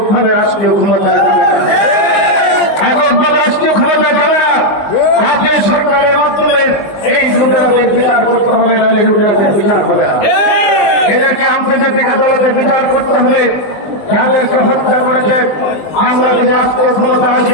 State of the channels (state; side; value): late; right; 19 ms